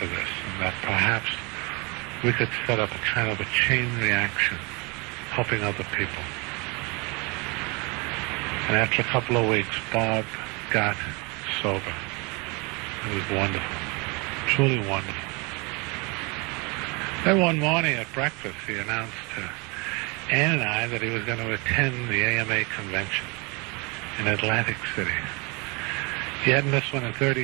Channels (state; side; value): quieter; left; 29.0 dB